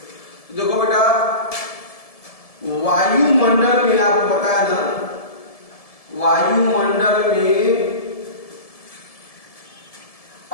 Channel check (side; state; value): right; late; 1.7 ms